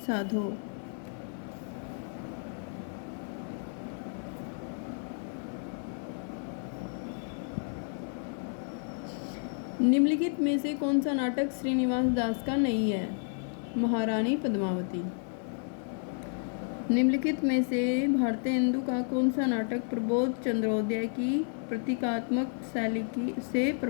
साधो। निम्नलिखित में से कौन सा नाटक श्रीनिवास दास का नहीं है? महारानी पद्मावती। निम्नलिखित में से भारतेंदु का कौन सा नाटक प्रबोध चंद्रोदय की प्रतीकात्मक शैली से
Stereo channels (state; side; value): silent; right; 57 dB below the other